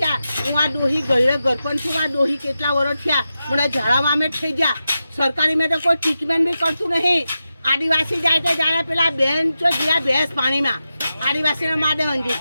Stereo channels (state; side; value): inverted; both; correlation -0.90